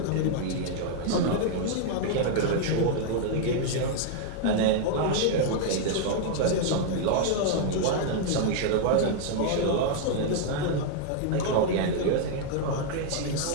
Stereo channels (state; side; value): different; both; correlation 0.00